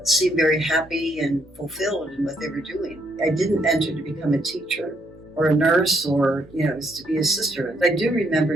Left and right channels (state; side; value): normal; both; correlation 0.72